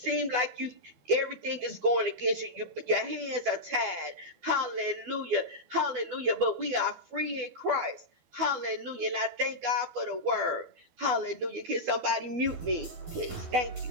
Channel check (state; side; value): late; left; 12 ms